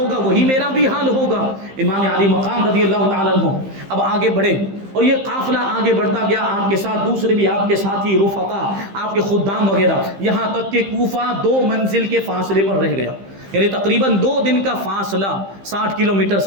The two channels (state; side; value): late; left; 15 ms